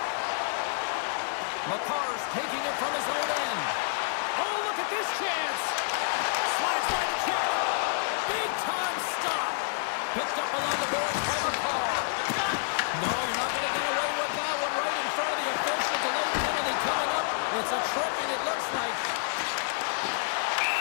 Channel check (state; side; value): silent; right; 59 dB below the other